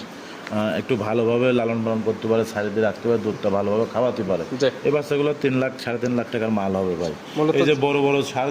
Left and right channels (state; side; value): identical; both; correlation 1.00